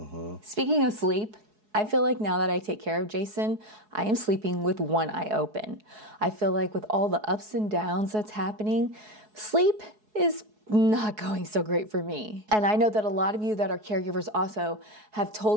Speaking of sleep, I feel like now that I take care of Jason, I am sleeping with one eye open. I feel like with all the ups and downs that's happening, sleep is not going so great for me. And I know that a lot of you that are caregivers also have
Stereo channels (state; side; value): late; left; 4.7 ms